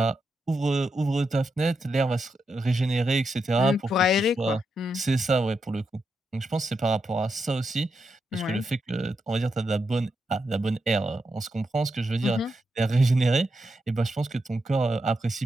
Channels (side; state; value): both; normal; correlation 0.85